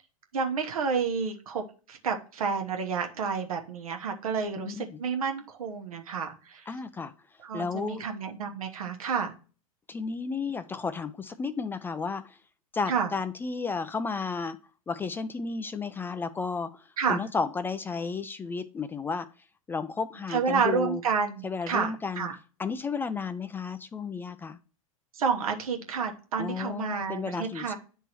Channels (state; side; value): normal; both; correlation 0.33